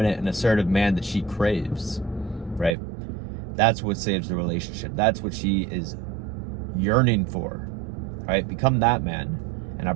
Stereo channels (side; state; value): left; drops out; at 2.8 s